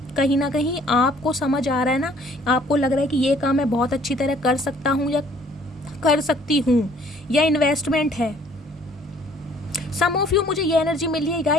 कहीं ना कहीं आपको समझ आ रहा है ना, आपको लग रहा है कि ये काम मैं बहुत अच्छी तरह कर सकता हूँ या कर सकती हूँ, या इन्वेस्टमेंट है। सम ऑफ यू मुझे ये एनर्जी मिली है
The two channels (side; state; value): both; normal; correlation 0.58